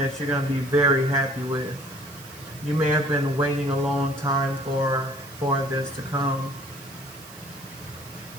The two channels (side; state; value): right; noise; hiss, 18 dB below the sound